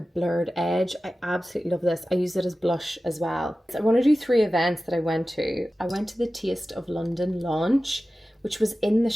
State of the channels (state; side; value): normal; both; correlation 0.95